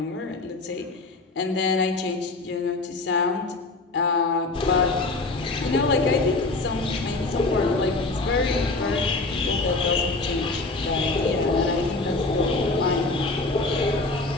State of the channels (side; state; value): right; quieter; 3.3 dB